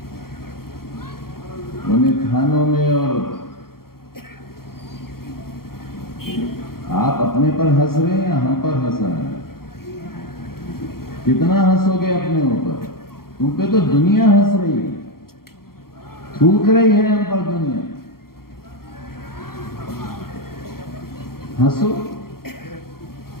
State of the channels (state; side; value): late; right; 0.93 ms